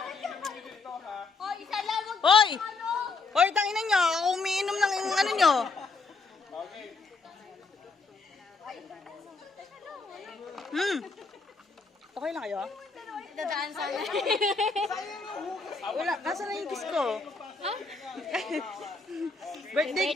iinom niyo dito ha. Oh, isa lang. Wag Hoy! ano. Hoy, tangina nyo. Ako umiinom ng ano nyo. Okay. Okay lang kayo? Dadaan sana. Wala, nasa na yung kiss ko? birthday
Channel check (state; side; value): quieter; right; 4.1 dB